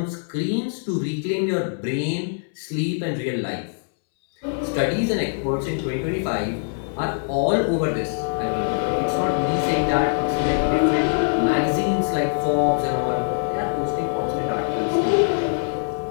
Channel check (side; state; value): right; silent; 63 dB below the other